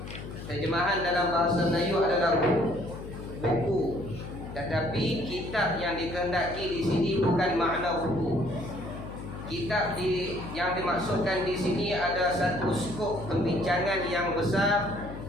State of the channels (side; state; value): left; noise; hum, 10 dB below the sound